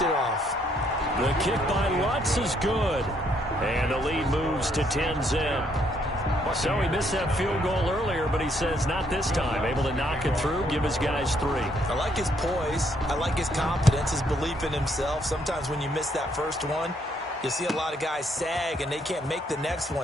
it off. The kick by Lutz is good, and the lead moves to 10-zip. So he missed that field goal earlier, but he says not this time. Able to knock it through, give his guys 3. I like his poise. I like his confidence, his belief in himself. Sometimes when you miss that first one, you see a lot of guys sag and they can't make the next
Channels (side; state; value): both; normal; correlation 0.70